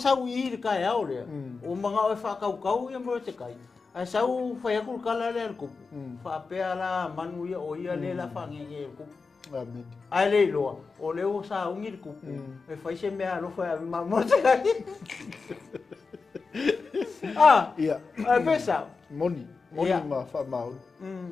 i le kai au lea. O mga o wha kau ia mro te kai. A sau whai akul kala le al kupu. Wha pea la manu ia o ia le la whangenge al kupu. A le loa. O le ua sa ungi le kupu. E whai se mea lo whai avi mamo te kai. A pesa. Moni ma wha mau.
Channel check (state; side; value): quieter; right; 4.5 dB